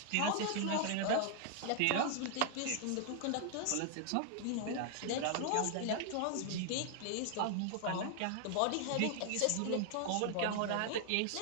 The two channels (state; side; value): different; both; correlation 0.00